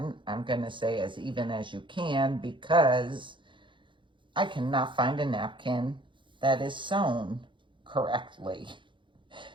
I'm going to say as even as you can because I cannot find a napkin that is sewn correctly.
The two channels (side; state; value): left; late; 0.23 ms